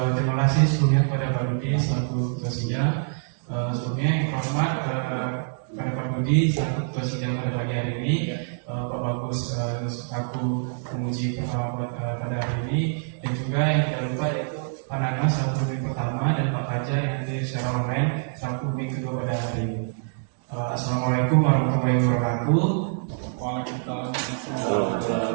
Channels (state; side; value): silent; left; digital silence